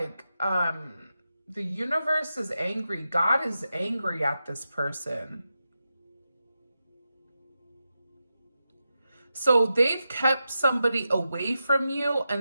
the universe is angry. God is angry at this person. So they've kept somebody away from you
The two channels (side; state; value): both; inverted; correlation -0.90